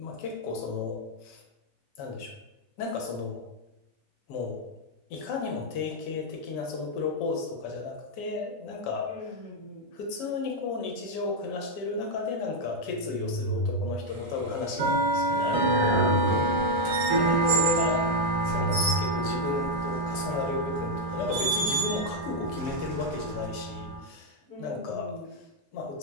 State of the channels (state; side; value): normal; both; correlation 0.02